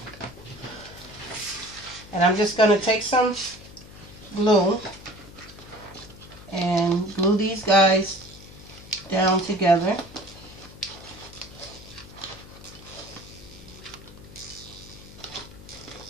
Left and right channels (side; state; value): left; noise; hum, 18 dB below the sound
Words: And I'm just going to take some glue and glue these guys down together.